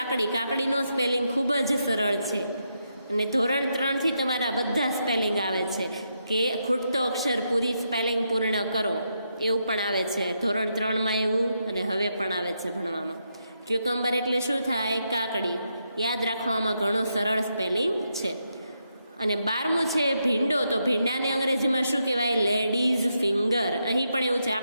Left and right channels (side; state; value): both; inverted; correlation -0.82